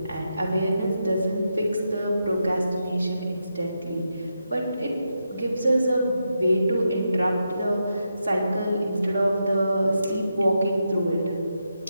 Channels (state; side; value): inverted; both; correlation -0.85